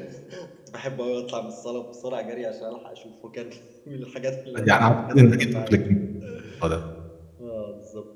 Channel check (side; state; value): both; identical; correlation 1.00